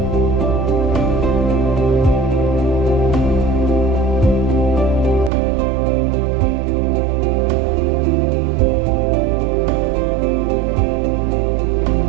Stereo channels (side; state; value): left; drops out; at 5.3 s